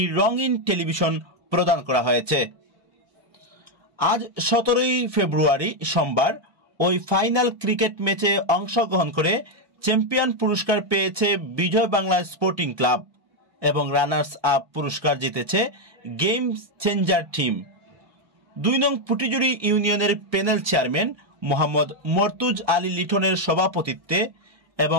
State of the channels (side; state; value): left; late; 1.2 ms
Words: রঙিন টেলিভিশন প্রদান করা হয়েছে। আজ ১৭ ফেব্রুয়ারি সোমবার ওই ফাইনাল ক্রিকেট ম্যাচে অংশগ্রহণ করে চ্যাম্পিয়ন পুরস্কার পেয়েছে বিজয় বাংলা স্পোর্টিং ক্লাব এবং রানার্স আপ পুরস্কার জিতেছে গেম চেঞ্জার টিম। ২ নং পুটিজুড়ি ইউনিয়নের প্যানেল চেয়ারম্যান মোহাম্মদ মর্তুজ আলী লিটনের সভাপতিত্বে